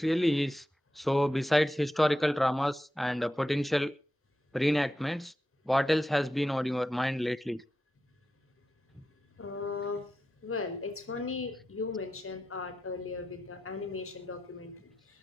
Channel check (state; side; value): normal; both; correlation 0.90